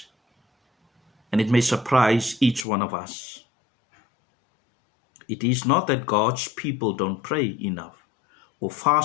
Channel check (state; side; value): drops out; right; at 2.7 s